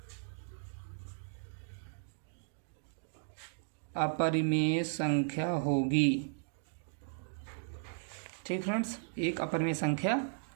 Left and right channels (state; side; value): silent; left; digital silence